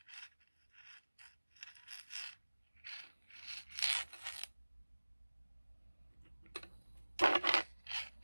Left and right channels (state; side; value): inverted; both; correlation -1.00